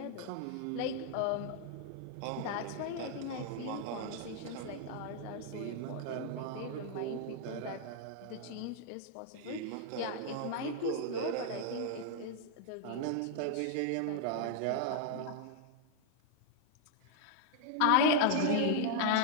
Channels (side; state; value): both; different; correlation 0.00